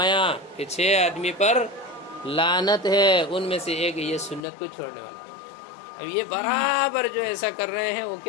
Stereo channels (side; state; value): right; drops out; at 4.4 s